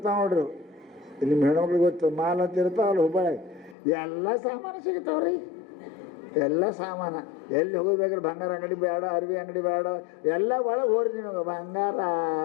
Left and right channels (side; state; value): right; drops out; at 3.8 s